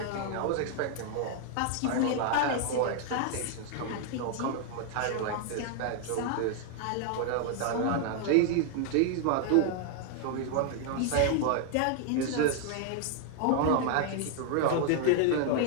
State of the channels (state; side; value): different; both; correlation 0.00